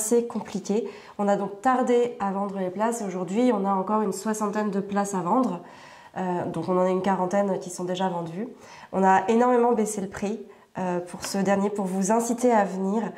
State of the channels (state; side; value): identical; both; correlation 1.00